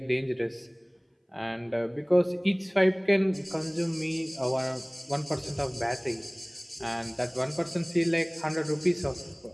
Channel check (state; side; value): identical; both; correlation 1.00